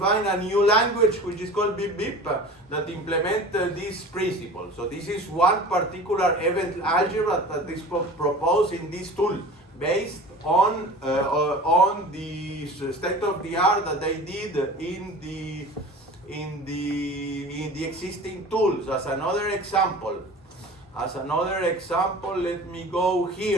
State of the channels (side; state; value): both; normal; correlation 0.39